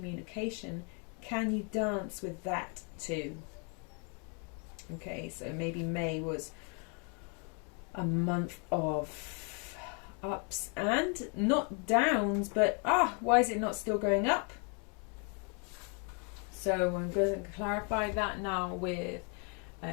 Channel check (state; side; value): quieter; right; 37.5 dB